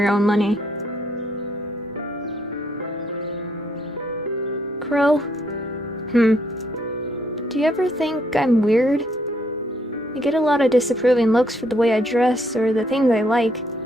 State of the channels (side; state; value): both; normal; correlation 0.70